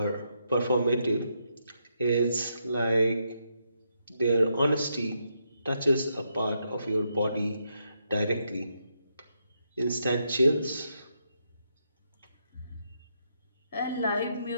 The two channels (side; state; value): both; inverted; correlation -0.79